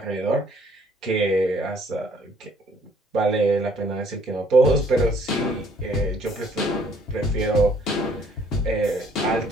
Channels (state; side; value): normal; both; correlation 0.61